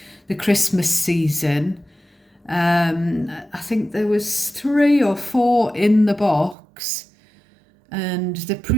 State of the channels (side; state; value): left; drops out; at 6.6 s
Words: Christmas season, I think there was 3 or 4 in the box, and the